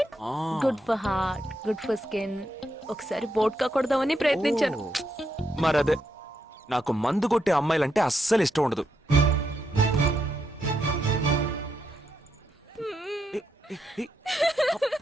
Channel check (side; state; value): both; normal; correlation 0.81